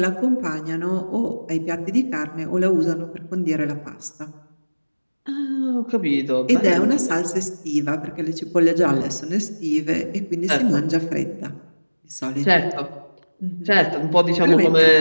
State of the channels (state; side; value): inverted; both; correlation -1.00